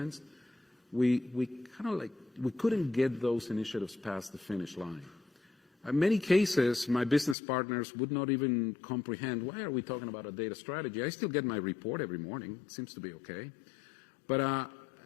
we couldn't get those initiatives past the finish line. In many cases, my business partners would not even comprehend, why are we talking about a data strategy? I still get my report every morning. It seems to be okay. But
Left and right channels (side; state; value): right; drops out; at 7.4 s